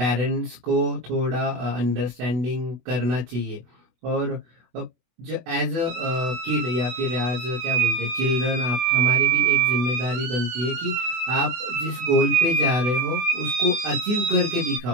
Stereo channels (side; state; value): left; late; 24 ms